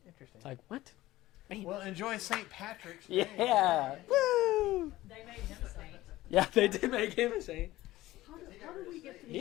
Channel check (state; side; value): quieter; right; 16.7 dB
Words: Interesting. It's like what? Well, enjoy St. Patrick's. Yeah. Woo! They made him a saint. Yeah, they did make him a saint. How do we get to